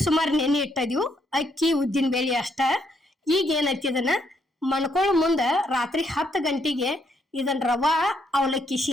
ಸುಮಾರು ನೆನೆ ಇಟ್ಟಿದೀವಿ. ಅಕ್ಕಿ ಉದ್ದಿನ ಬೇಳೆ ಅಷ್ಟ. ಈಗ ಏನೈತಿ, ಇದನ್ನ ಮಣ್ಕೊಳ್ಳೋ ಮುಂದೆ ರಾತ್ರಿ 10 ಗಂಟೆಗೆ ಇದನ್ನ ರವಾ ಅವಲಕ್ಕಿ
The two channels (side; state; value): both; normal; correlation 0.73